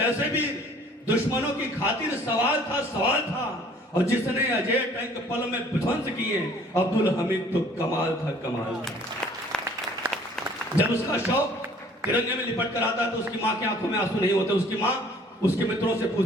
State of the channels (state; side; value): normal; both; correlation 0.55